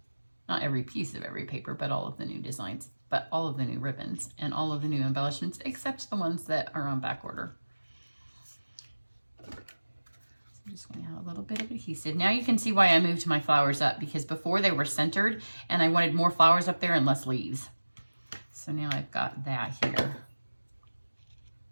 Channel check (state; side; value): inverted; both; correlation -1.00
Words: not every piece of every paper, but all of the new designs, but all of the new ribbons and all of the new embellishments, except the ones that are on back order. I'm just going to add a little bit of adhesive. Now you can see why I moved my flowers up, because before they were centered and I wanted more flowers up there and less leaves. So now I've got that here.